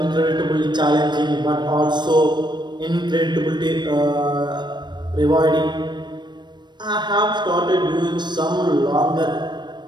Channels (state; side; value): late; left; 0.22 ms